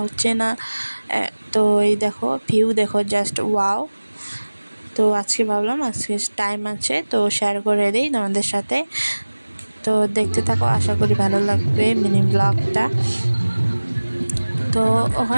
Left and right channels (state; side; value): inverted; both; correlation -1.00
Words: হচ্ছে না। তো এই দেখো, ভিউ দেখো, জাস্ট ওয়াও। তো আজকে ভাবলাম আজকে টাইম আছে তো শেয়ার করে দিই তোমাদের সাথে। তো দেখতে থাকো, আশা করি ভালো লাগবে মিনি ব্লগটা। তো